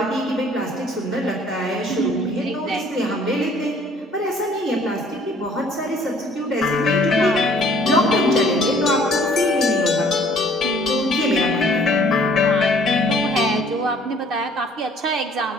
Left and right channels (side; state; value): both; normal; correlation 0.57